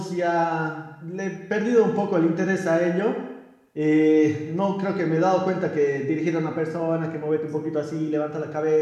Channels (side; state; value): both; identical; correlation 1.00